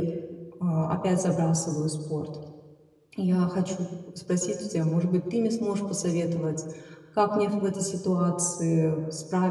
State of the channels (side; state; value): both; identical; correlation 1.00